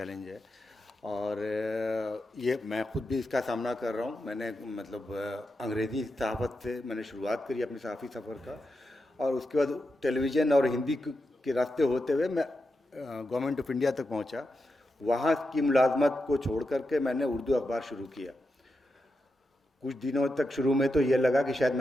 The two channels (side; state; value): both; normal; correlation 0.88